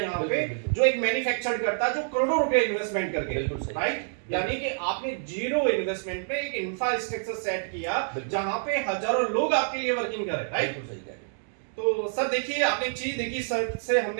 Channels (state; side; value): silent; left; digital silence